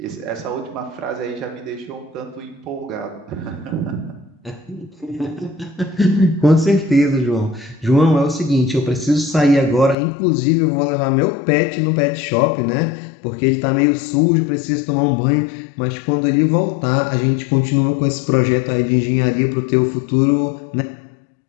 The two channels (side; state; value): right; drops out; at 10.0 s